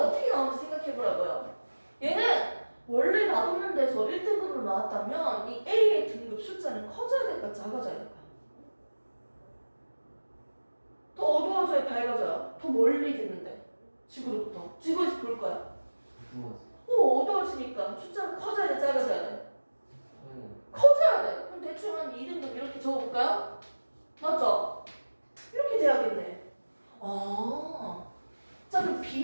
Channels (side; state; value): both; inverted; correlation -1.00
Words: 어떻게 나오는지 생각해보라고요. 얘는 원래 놔뒀는 데서 1등급으로 나왔다면 이 A의 등급 숫자는 커져야 될까 작아져야 될까? 더 어두워져야 밝아져요? 더 멀리 있는데 지구로부터 지구에서 볼 거야. 어두워지니까 숫자는 커져야 돼 작아져야 돼? 커져야 돼. 그럼 대충 한 2등급 이렇게 적어볼까요? 맞죠? 이렇게 돼야겠네. 자, 그럼